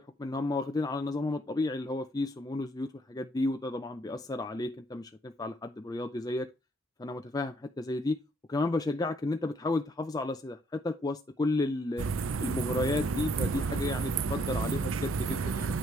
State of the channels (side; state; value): both; normal; correlation 0.68